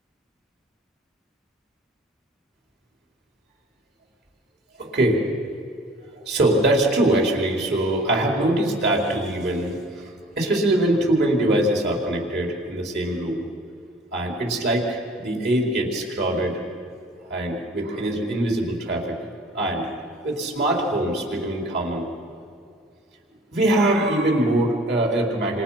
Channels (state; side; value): normal; both; correlation 0.49